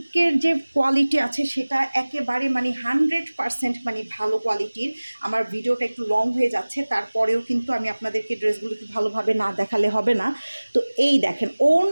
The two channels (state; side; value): inverted; both; correlation -1.00